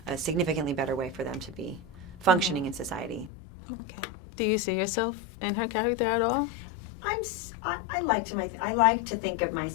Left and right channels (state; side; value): drops out; right; at 3.3 s